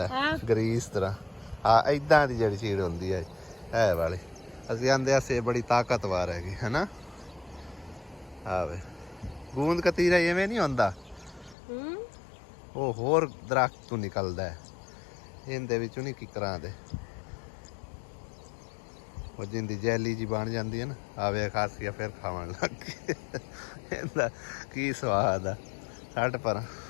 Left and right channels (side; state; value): right; drops out; at 11.6 s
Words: ग्रीस तरह। हाँ इदां दी जिहड़ी चीड़ होंदी है वाली असीं आंदे असे बड़ी ताकतवर है ना। हाँ वे गूंद कतीरा इवें नहीं होंदा, वो होर दरख्त तो निकलदा है, इहदे विचों नहीं किकरां दे वो जिंदी जैली जी बन जाती है ना। आवे खासिया फिर खावन लग गई। इहदा की स्वाद आ छड्ड पर।